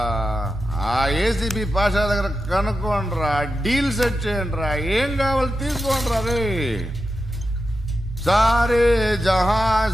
ఆ ఏసీబీ పాషా దగ్గర కనుక్కోండ్రా, డీల్ సెట్ చేయండిరా, ఏం కావాలి తీసుకోండిరా రే. సారే జహా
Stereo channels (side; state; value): both; normal; correlation 0.90